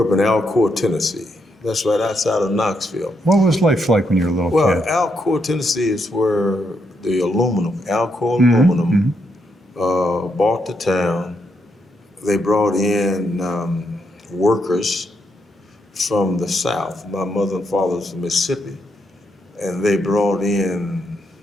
up in Alcoa, Tennessee. That's right outside of Knoxville. What was life like when you were a little kid? Alcoa, Tennessee is where the Alcoa aluminum bought the town. They brought in workers from the South. My mother and father was from Mississippi. And they brought in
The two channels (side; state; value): both; normal; correlation 0.78